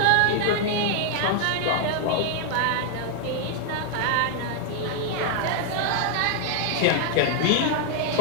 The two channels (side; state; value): both; different; correlation 0.00